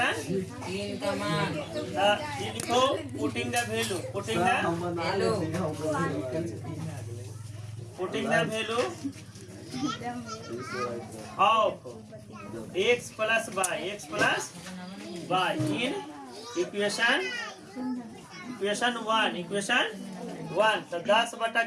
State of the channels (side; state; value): both; identical; correlation 1.00